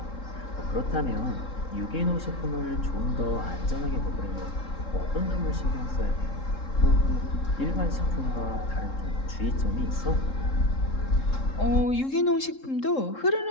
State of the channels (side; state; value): right; late; 3.7 ms